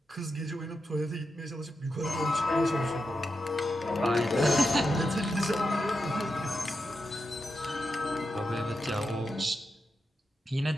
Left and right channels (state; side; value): normal; both; correlation 0.87